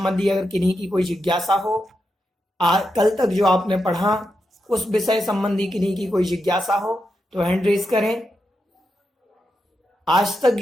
अगर किन्हीं की कोई जिज्ञासा हो, कल तक जो आपने पढ़ा उस विषय संबंधी किन्हीं की कोई जिज्ञासा हो तो हैंड रेज करें। आज तक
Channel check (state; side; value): normal; both; correlation 0.86